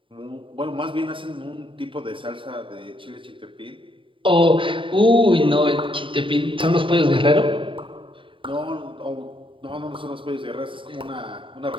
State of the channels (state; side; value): late; left; 0.25 ms